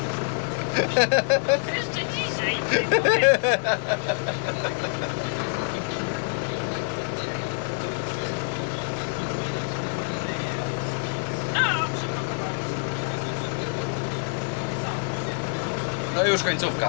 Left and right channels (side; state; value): right; silent; digital silence